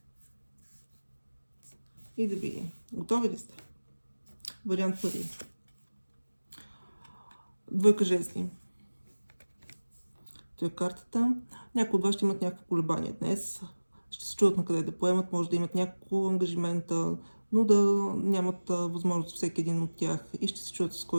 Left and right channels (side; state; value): both; inverted; correlation -1.00